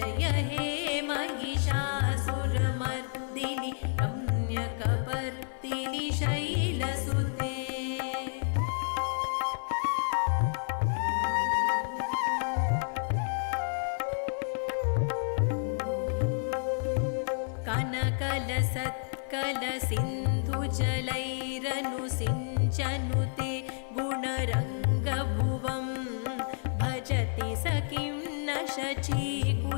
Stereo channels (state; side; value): silent; right; 58 dB below the other